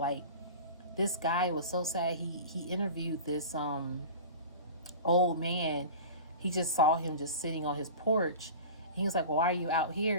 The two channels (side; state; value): both; inverted; correlation -0.35